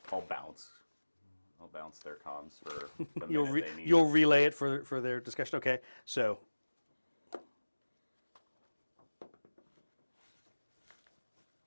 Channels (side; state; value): both; inverted; correlation -1.00